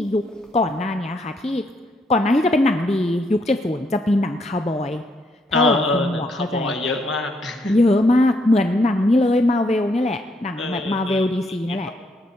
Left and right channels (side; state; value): both; normal; correlation 0.74